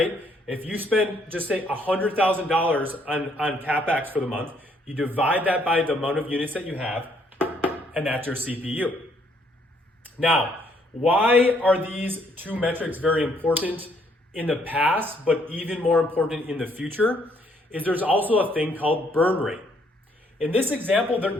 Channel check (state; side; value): normal; both; correlation 0.68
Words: If you spend, just say $100,000 on CapEx for the month, you divide that by the amount of units that you have, and that's your CPU. Now, why are these two metrics very important in the past, but even more important in the future? Is there's also a thing called burn rate. In this example,